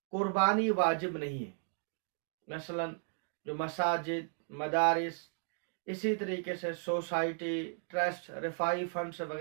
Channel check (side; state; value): left; silent; 55 dB below the other